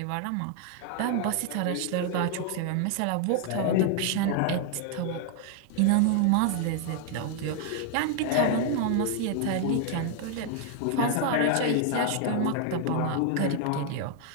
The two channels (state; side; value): different; both; correlation 0.00